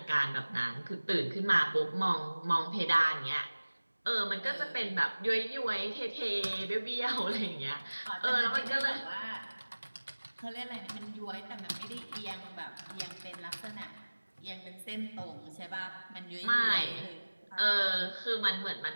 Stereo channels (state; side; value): inverted; both; correlation -1.00